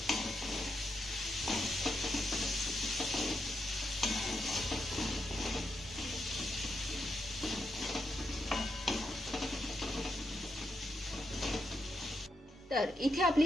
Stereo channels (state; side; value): normal; both; correlation 0.83